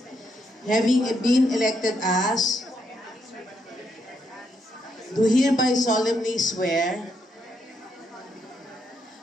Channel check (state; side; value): normal; both; correlation 0.77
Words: having been elected as, do hereby solemnly swear